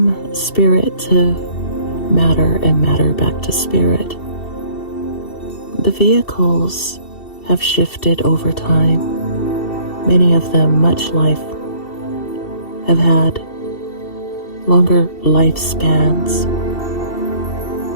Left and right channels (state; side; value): late; right; 2.7 ms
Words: spirit to matter and matter back to spirit. The vehicles have shifted over time. Many of them, much life, have had longer lifespans